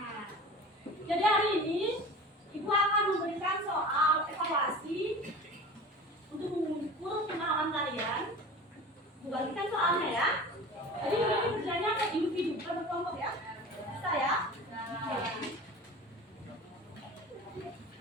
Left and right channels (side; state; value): both; normal; correlation 0.37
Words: Jadi hari ini Ibu akan memberikan soal evaluasi untuk mengukur pengalaman kalian. Ibu bagikan soalnya ya. Jadi ini kerjanya ke individu, bukan berkelompok ya. Bisa ya?